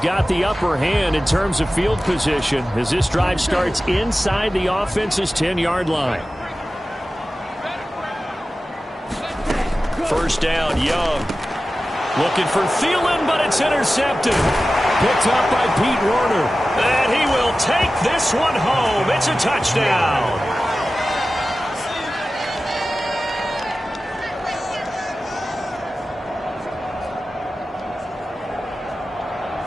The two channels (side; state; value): both; normal; correlation 0.95